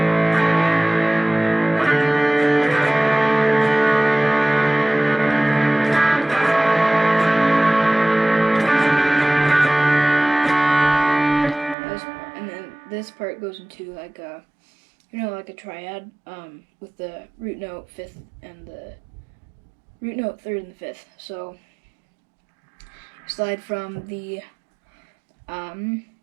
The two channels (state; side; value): drops out; left; at 11.8 s